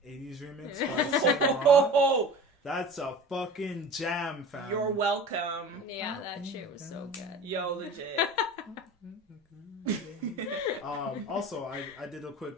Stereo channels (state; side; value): normal; both; correlation 0.37